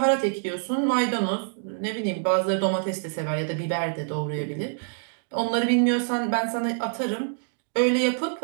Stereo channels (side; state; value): left; silent; digital silence